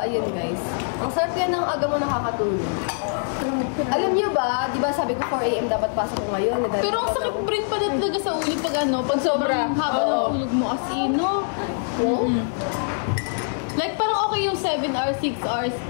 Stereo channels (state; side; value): silent; right; 60 dB below the other